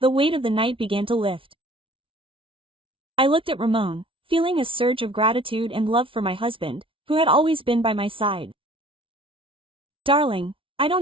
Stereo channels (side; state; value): left; late; 0.25 ms